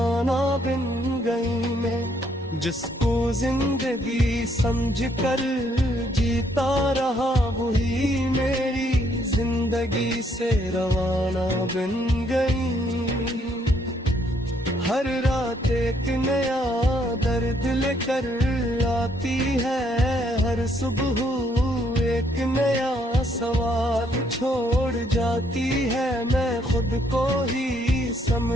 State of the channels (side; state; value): both; normal; correlation 0.70